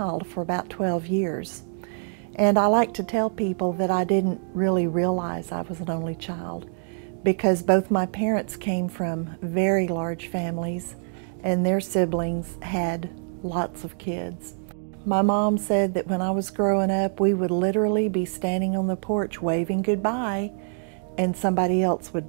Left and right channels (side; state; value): left; silent; 62 dB below the other